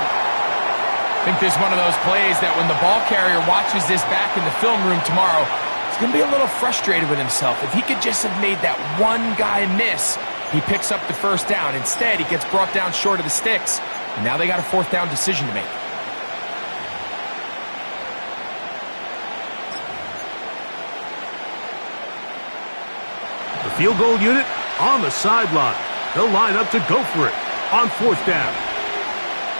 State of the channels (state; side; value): inverted; both; correlation -1.00